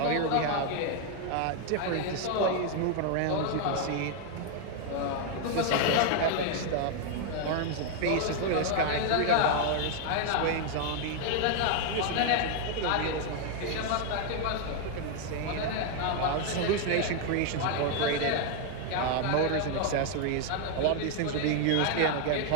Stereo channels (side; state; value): both; different; correlation 0.00